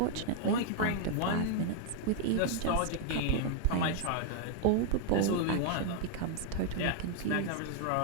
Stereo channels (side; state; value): both; different; correlation 0.00